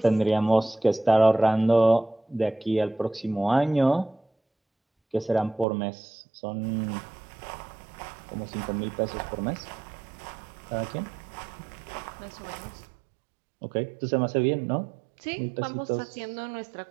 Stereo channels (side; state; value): left; drops out; at 5.7 s